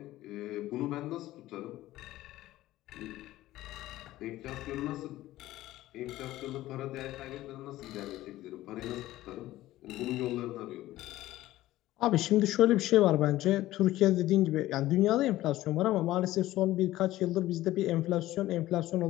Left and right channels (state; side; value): quieter; right; 15.7 dB